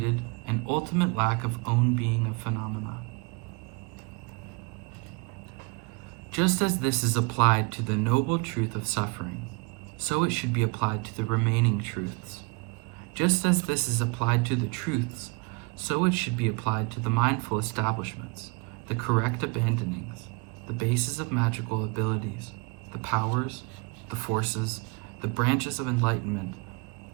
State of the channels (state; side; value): quieter; left; 30.7 dB